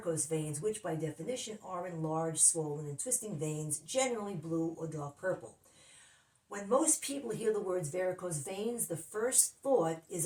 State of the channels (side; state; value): both; identical; correlation 1.00